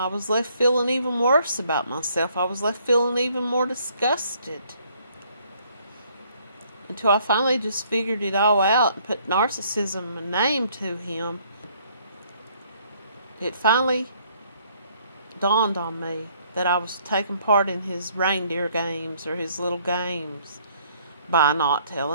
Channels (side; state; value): both; inverted; correlation -0.64